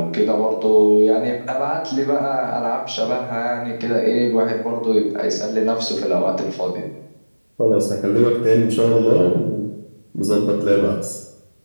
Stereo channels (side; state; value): both; inverted; correlation -1.00